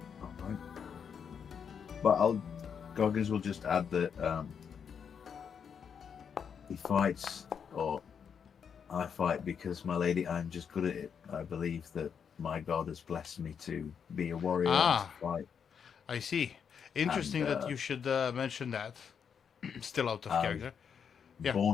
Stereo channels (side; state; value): right; quieter; 7.1 dB